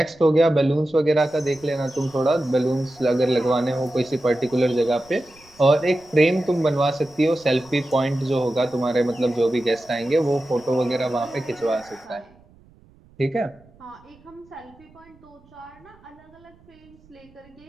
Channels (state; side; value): noise; right; rumble, 28 dB below the sound